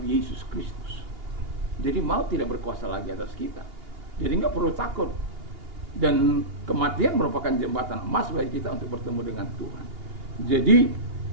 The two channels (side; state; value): left; late; 2.8 ms